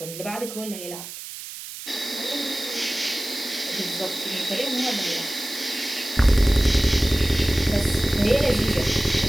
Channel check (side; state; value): right; noise; hiss, 11 dB below the sound